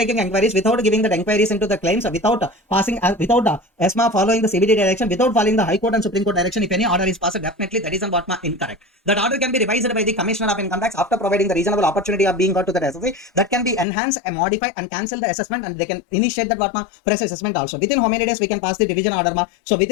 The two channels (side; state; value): right; drops out; at 13.9 s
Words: inquiries, without giving the inquiries into the claims, without passing, without ESMA following the CBD direction, without following the High Court and Supreme Court direction? If any order is passed, definitely that is what incorrect. That order can be revised by the Commissioner of Income Tax after providing the reasonable opportunity of being got to the SSC. That can be enhanced and modify and cancel the assessment, and they can initiate that what fresh assessment also. Within how many days we can pass the division order ma? So